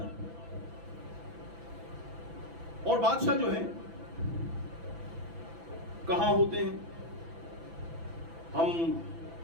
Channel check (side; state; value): left; late; 6.0 ms